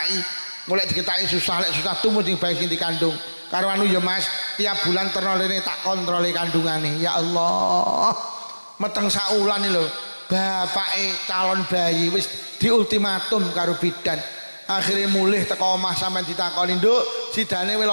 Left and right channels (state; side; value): inverted; both; correlation -1.00